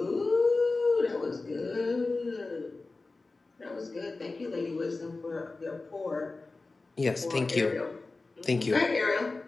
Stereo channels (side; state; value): right; quieter; 3.6 dB